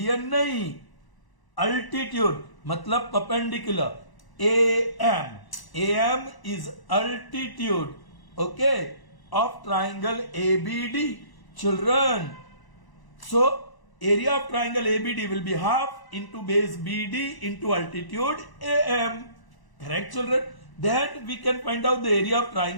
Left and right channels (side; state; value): right; late; 1.0 ms